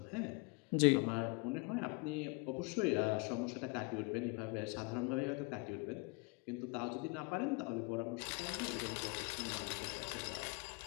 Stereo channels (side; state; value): right; quieter; 29.1 dB